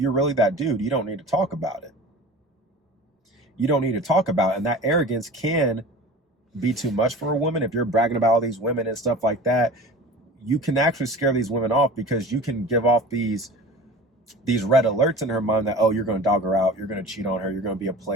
really that dude, you don't need to talk about it. You don't need to talk about it. And that arrogance can be too much for a woman. If you're bragging about all these women and stuff like that, you can actually scare these women off, because you can give off these red alerts in her mind that, oh, you're going to dog her out, you're going to cheat on her, you're going to be a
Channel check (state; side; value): normal; both; correlation 0.38